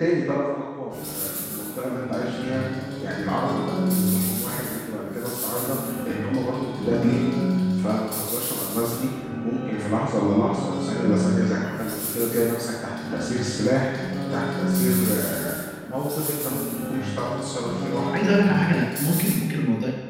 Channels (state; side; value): identical; both; correlation 1.00